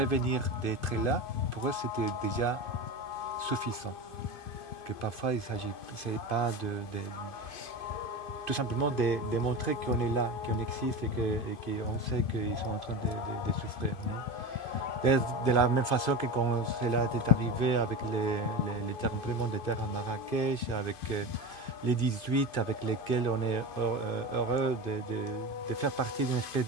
d'être là, pour eux, c'était déjà suffisant. Que parfois, il ne s'agit pas tout simplement de montrer qu'on est là, qu'on existe et qu'on sait qu'ils sont en train de souffrir. Non? De la même façon que quand cela est arrivé avec les tremblements de terre à Marrakech, avec les 18 avec lesquels on est heureux de faire partie d'une espèce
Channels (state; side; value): late; right; 2.5 ms